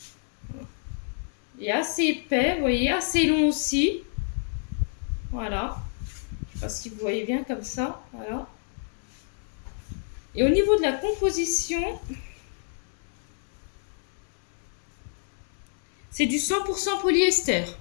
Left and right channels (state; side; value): silent; right; 60 dB below the other